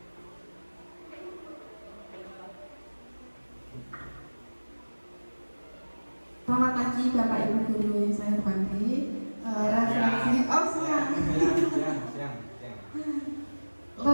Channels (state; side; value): inverted; both; correlation -1.00